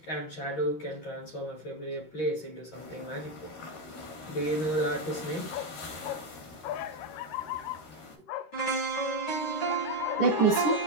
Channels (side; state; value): right; late; 13 ms